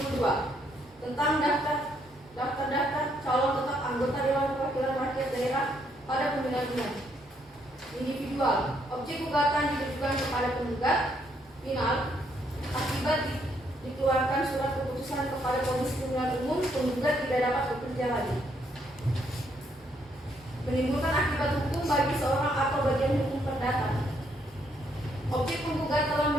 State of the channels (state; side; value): normal; both; correlation 0.72